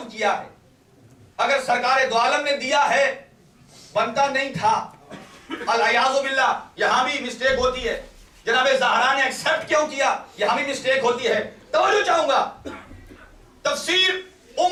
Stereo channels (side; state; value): both; identical; correlation 1.00